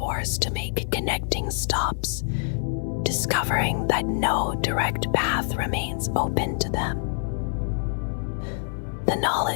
to make connecting stops, discovering that no direct path remains open to them. The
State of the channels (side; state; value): right; silent; digital silence